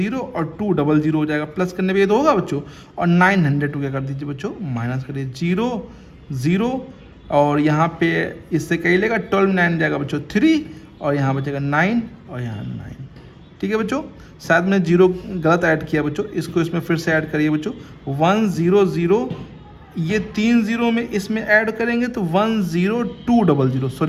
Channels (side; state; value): both; identical; correlation 1.00